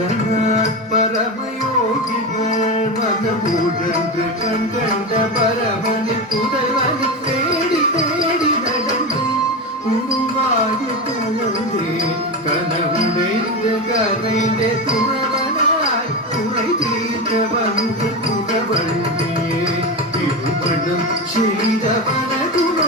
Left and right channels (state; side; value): normal; both; correlation 0.19